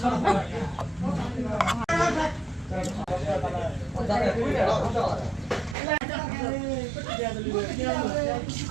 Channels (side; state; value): left; drops out; at 5.8 s